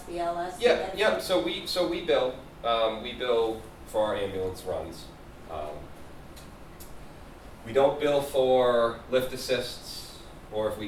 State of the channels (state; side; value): identical; both; correlation 1.00